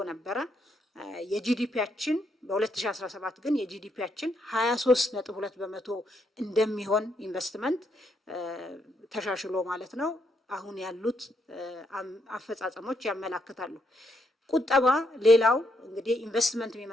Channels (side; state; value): both; normal; correlation 0.77